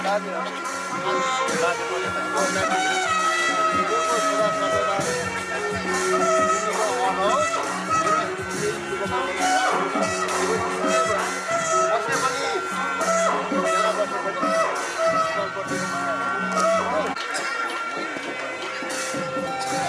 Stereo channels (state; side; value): identical; both; correlation 1.00